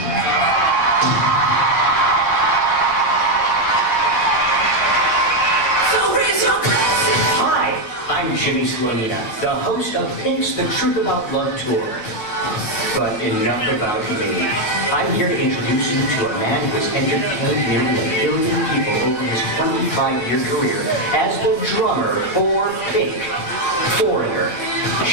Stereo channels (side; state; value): right; late; 9.3 ms